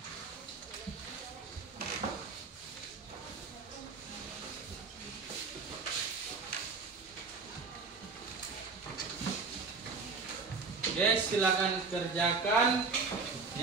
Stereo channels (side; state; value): left; quieter; 4.5 dB